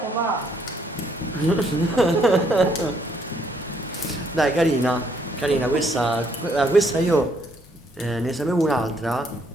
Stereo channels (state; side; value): normal; both; correlation 0.69